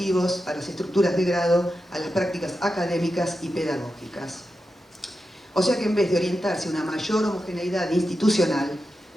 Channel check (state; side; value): normal; both; correlation 0.90